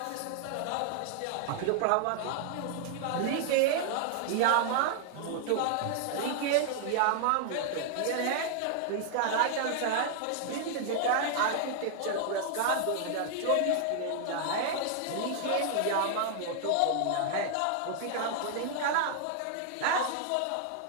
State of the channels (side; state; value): both; different; correlation 0.00